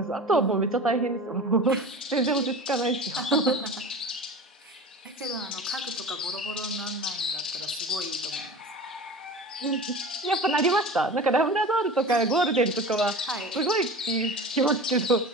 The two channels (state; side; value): normal; both; correlation 0.34